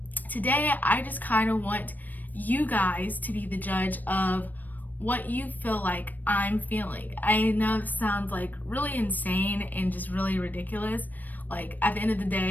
today I just kind of want you guys to be the judge of what you feel like I'm feeling. I know this sounds like really insane and just really ridiculous. Like, at the end of the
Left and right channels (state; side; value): late; right; 0.086 ms